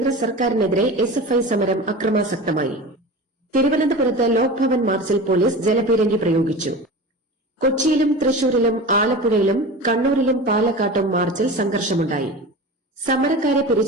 സർക്കാരിനെതിരെ SFI സമരം അക്രമാസക്തമായി. തിരുവനന്തപുരത്ത് ലോക്ഭവൻ മാർച്ചിൽ പോലീസ് ജലപീരങ്കി പ്രയോഗിച്ചു. കൊച്ചിയിലും തൃശൂരിലും ആലപ്പുഴയിലും കണ്ണൂരിലും പാലക്കാട്ടും മാർച്ചിൽ സംഘർഷമുണ്ടായി. സമരക്കാരെ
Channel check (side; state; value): both; normal; correlation 0.32